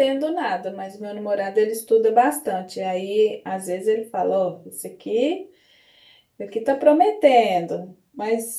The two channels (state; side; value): identical; both; correlation 1.00